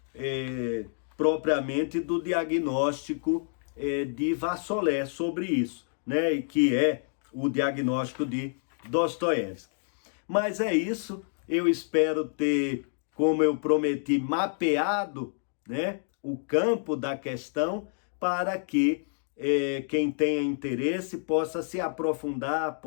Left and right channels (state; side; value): silent; right; digital silence